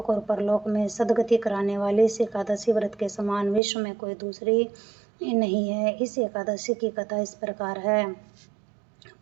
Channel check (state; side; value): drops out; left; at 3.6 s